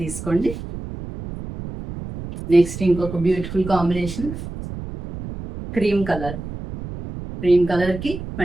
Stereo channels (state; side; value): noise; right; rumble, 10 dB below the sound